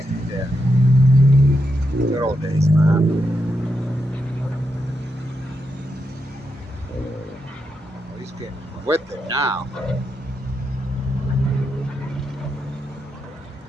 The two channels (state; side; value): normal; both; correlation 0.84